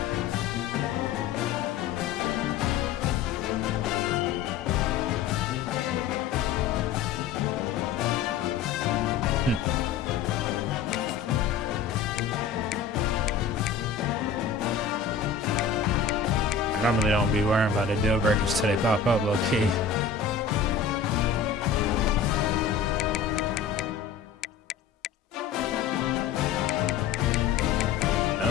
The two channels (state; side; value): quieter; right; 6.5 dB